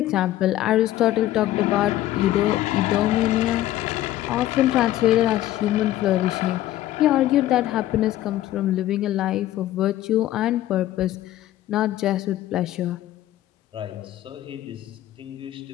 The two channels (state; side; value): quieter; right; 14.1 dB